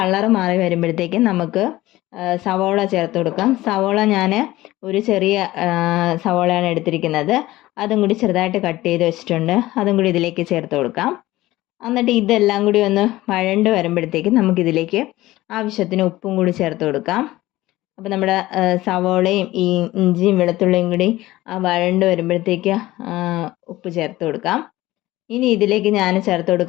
മാറി വരുമ്പോഴത്തേക്ക് നമുക്ക് സവോള ചേർത്ത് കൊടുക്കാം. സവോള ഞാൻ ഒരു ചെറിയ സവോളയാണ് എടുത്തിരിക്കുന്നത്. അതും കൂടി ചെറുതായിട്ട് കട്ട് ചെയ്ത് വെച്ചിട്ടുണ്ട്. അതും കൂടി ഇതിലേക്ക് ചേർത്ത് കൊടുക്കാം. എന്നിട്ട് ഇതെല്ലാം കൂടി ഒന്ന് വഴണ്ട് വരുമ്പോഴത്തേക്ക് നമുക്കിതിലേക്ക് ആവശ്യത്തിന് ഉപ്പും കൂടി ചേർത്ത് കൊടുക്കാം. അപ്പോൾ നമ്മുടെ സവോളയും ഈ ഇഞ്ചിയും വെളുത്തുള്ളിയും കൂടി വഴണ്ട് വരുമ്പോഴത്തേക്ക് ഉപ്പ് ചേർത്ത് കൊടുക്കാം. ഇനി ഇതിലേക്ക് ഞാൻ ചേർത്ത്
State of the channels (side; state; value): right; quieter; 17.2 dB